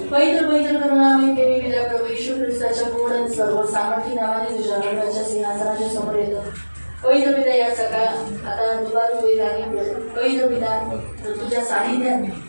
पवित्र करुणामय देवी तुझ्या प्रभू येशू ख्रिस्ताच्या गोड आणि सर्व सामर्थ्य नावाने तुझ्या हृदयाच्या सिंहासनाच्या समोर येतो. पवित्र पिता, या सकाळ आता दुपार वेळ झाली. पवित्र पिता, तुझ्या सानिध्यात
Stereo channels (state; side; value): inverted; both; correlation -1.00